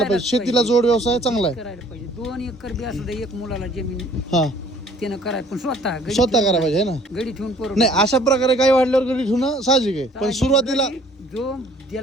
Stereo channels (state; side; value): normal; both; correlation 0.56